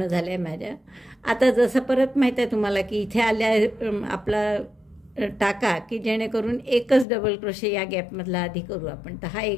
झाल्या माझ्या. आता जसं परत माहीत आहे तुम्हाला की इथे आल्या आपला टाका की जेणेकरून एकच डबल क्रोशे या गॅपमधला आधी करू आपण. तर हा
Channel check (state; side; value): drops out; right; at 7.1 s